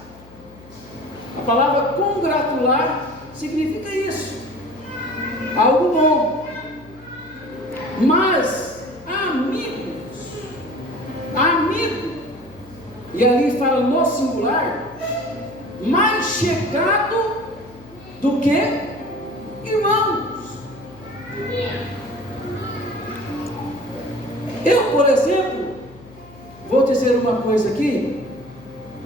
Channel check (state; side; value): noise; left; hum, 22 dB below the sound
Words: A palavra congratular significa isso, algo bom. Mas amigo, e ali fala no singular, mais chegado do que irmãos. Eu, por exemplo, vou dizer uma coisa aqui.